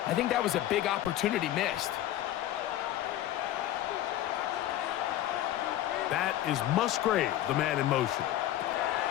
I think that was a big opportunity missed. That is Musgrave, the man in motion.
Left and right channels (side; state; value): right; quieter; 13.3 dB